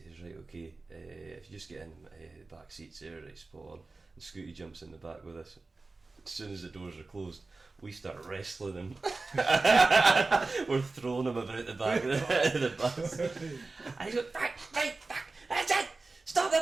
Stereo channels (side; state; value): left; quieter; 3.6 dB